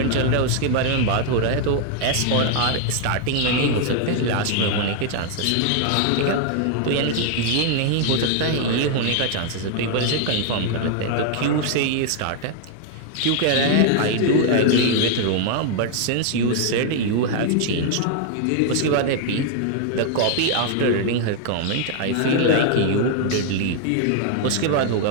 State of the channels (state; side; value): different; both; correlation 0.00